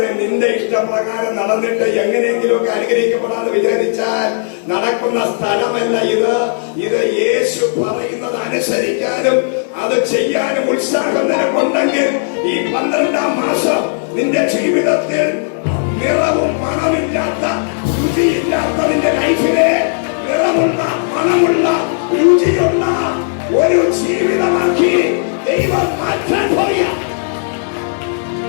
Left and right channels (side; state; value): right; silent; digital silence